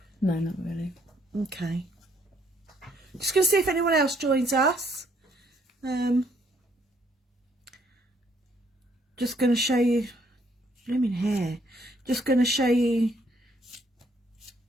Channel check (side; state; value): both; normal; correlation 0.68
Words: No, not really. Okay. Just going to see if anyone else joins us. Just going to show you... Blooming hair. Just going to show you